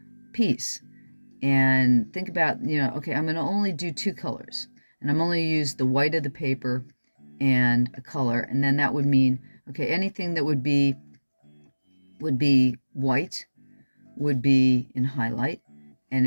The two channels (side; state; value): both; inverted; correlation -1.00